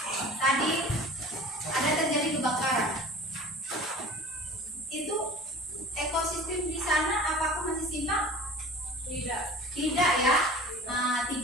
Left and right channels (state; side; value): normal; both; correlation 0.42